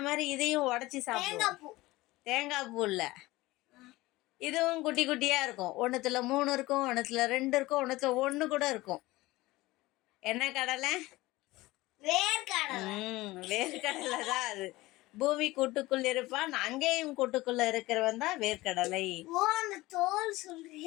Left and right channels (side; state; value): right; quieter; 19.4 dB